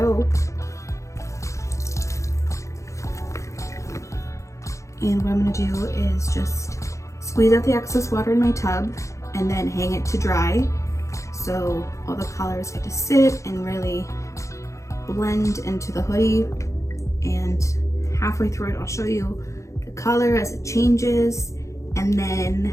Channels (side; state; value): right; late; 0.15 ms